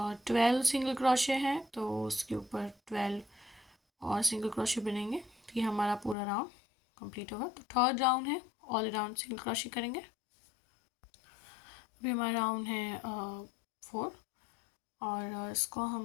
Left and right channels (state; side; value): drops out; right; at 6.2 s